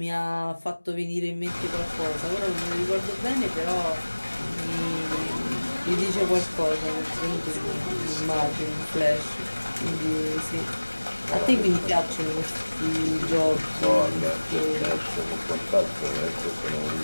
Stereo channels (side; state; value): both; inverted; correlation -1.00